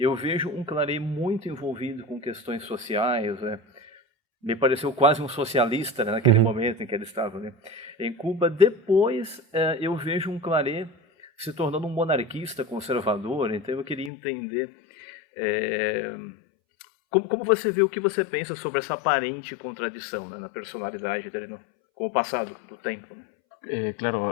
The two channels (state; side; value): drops out; right; at 14.1 s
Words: vejo um Claret muito envolvido com questões sociais, me pareceu quase um socialista, né, naquele momento em que ele estava, né, em Cuba. Depois eu vejo um Claret se tornando um monarquista conservador, então eu queria entender como você vê, o que você pensa sobre essa aparente contradição, né, na personalidade dele com o passado do tempo, né?